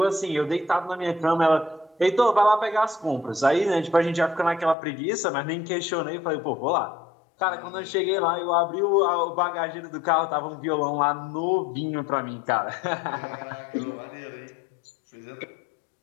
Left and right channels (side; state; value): right; drops out; at 4.8 s